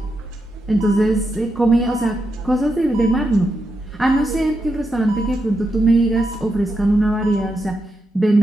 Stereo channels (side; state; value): both; normal; correlation 0.85